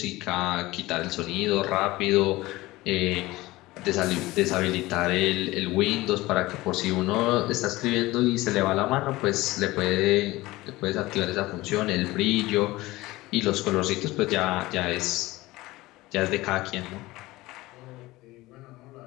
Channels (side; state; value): right; quieter; 19.3 dB